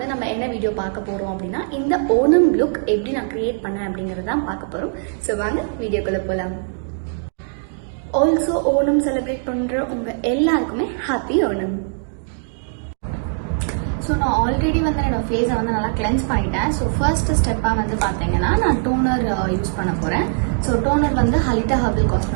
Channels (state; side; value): silent; left; digital silence